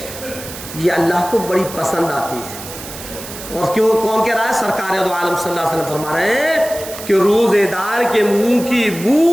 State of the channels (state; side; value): noise; right; hiss, 12 dB below the sound